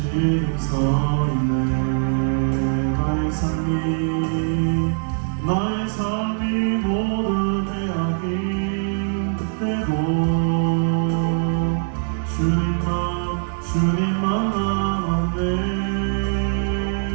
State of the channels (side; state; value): left; silent; 61 dB below the other